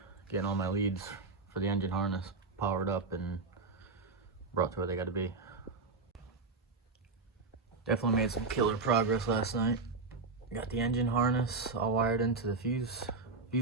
getting all my leads for the engine harness powered up and brought to where they gotta be. Definitely made some killer progress last night. Got the engine harness all wired into the fuse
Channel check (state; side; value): quieter; left; 4.0 dB